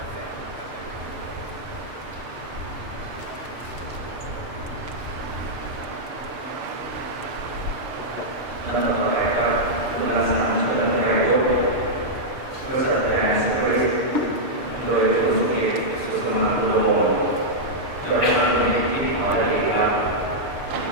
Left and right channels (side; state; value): left; late; 6.6 ms